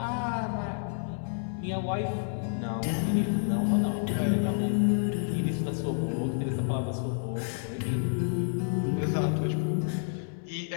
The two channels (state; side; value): silent; right; 58 dB below the other